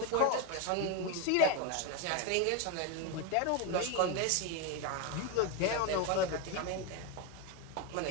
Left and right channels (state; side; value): different; both; correlation 0.02